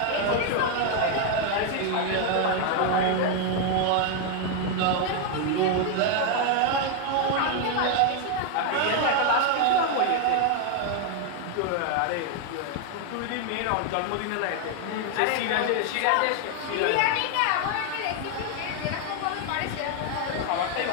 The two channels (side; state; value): both; different; correlation 0.00